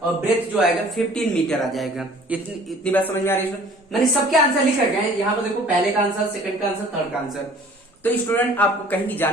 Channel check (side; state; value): both; normal; correlation 0.51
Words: और ब्रेथ जो आएगा 15 मीटर आ जाएगा। इतनी बात समझ में आ रही है। मैंने सबके आंसर लिख रखे हैं यहाँ पर, देखो पहले का आंसर, सेकंड का आंसर, थर्ड का आंसर। तो स्टूडेंट आपको कहीं भी